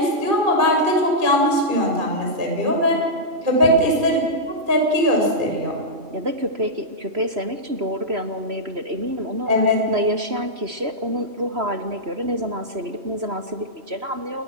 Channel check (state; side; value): late; left; 3.0 ms